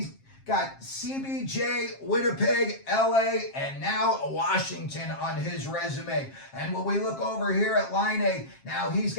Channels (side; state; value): right; late; 7.5 ms